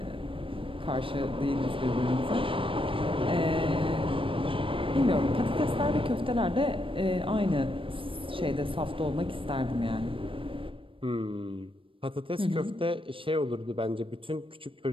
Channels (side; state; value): left; late; 0.25 ms